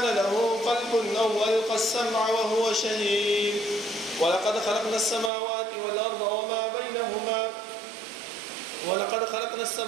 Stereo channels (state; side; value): drops out; left; at 5.3 s